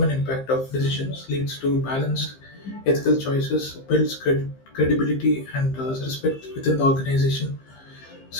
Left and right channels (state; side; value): late; right; 15 ms